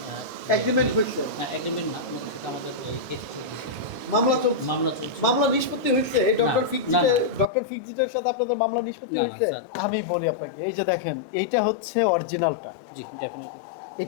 এগ্রিমেন্ট হয়েছে, না এগ্রিমেন্ট না, ওনাদের সাথে আমাদের এই কেস চলছে, মামলা চলছে, মামলা চলছে। মামলা নিষ্পত্তি হয়েছে এই ডক্টর না, ফিক্সিটের, না। ডক্টর ফিক্সিটের সাথে আপনাদের মামলা নিষ্পত্তি না, না, হয়েছে? স্যার। আমি বলি আপনাকে, এই যে দেখেন, এইটা হচ্ছে অরিজিনালটা, জি ডেফিনেটলি।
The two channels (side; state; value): right; drops out; at 7.5 s